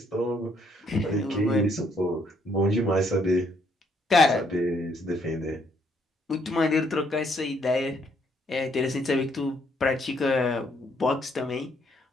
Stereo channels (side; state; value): both; normal; correlation 0.70